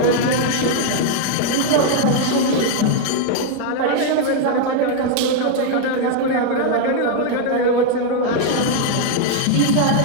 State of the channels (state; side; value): different; both; correlation 0.00